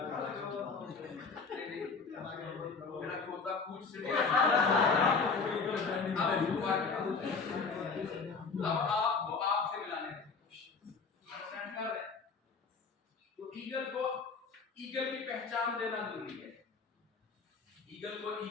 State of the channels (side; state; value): right; quieter; 4.7 dB